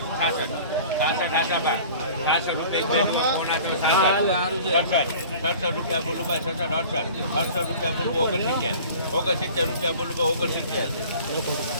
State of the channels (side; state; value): both; inverted; correlation -0.43